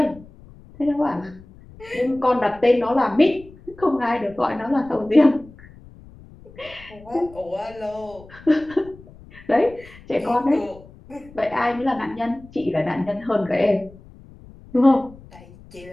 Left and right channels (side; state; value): left; noise; rumble, 21 dB below the sound